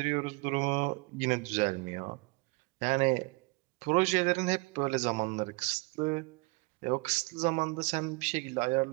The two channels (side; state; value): left; quieter; 28.3 dB